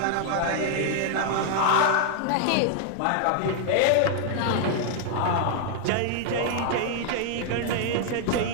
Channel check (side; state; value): both; different; correlation 0.00